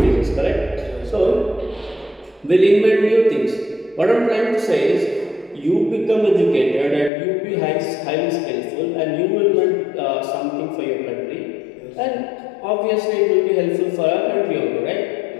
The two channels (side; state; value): right; drops out; at 7.1 s